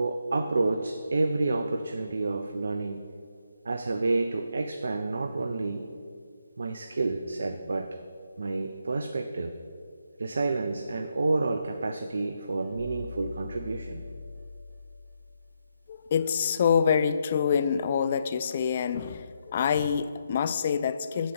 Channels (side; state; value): both; inverted; correlation -0.79